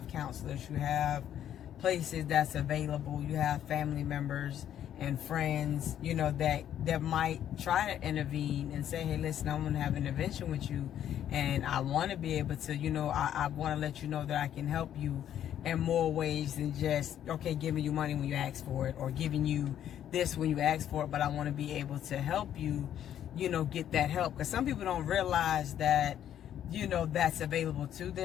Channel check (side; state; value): right; quieter; 10.5 dB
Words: counselors, you have places that's available, you have family members and friends, you know, that might try to intervene and say, hey, listen, I'm going to have an intervention with you and I want to be able to, you know, I want to let you know that I can help you in more ways than just, okay, giving you money when you ask for it or giving you this when you ask for it, but I want to be able to help you, you know, get that help. Because some people don't realize that, you know, that's available to